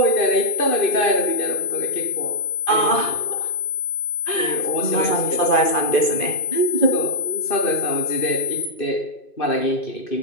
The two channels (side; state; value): right; late; 2.5 ms